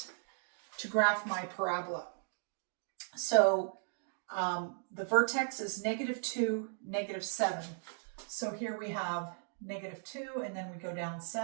to graph my parabola. So the vertex is -2, -7. So here we have -2, and then we go down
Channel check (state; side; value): silent; left; digital silence